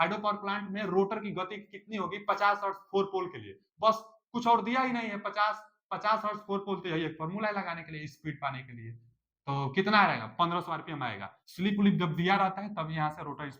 पावर प्लांट में रोटर की गति कितनी होगी? 50 हर्ट्ज 4 पोल के लिए, बस कुछ और दिया ही नहीं है। 50 हर्ट्ज 4 पोल, तो यही एक फॉर्मूला है लगाने के लिए, स्पीड पाने के लिए। तो कितना आएगा? 1500 आरपीएम आएगा। स्लिप उलिप जब दिया रहता है तब यहाँ से रोटर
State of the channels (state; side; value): identical; both; correlation 1.00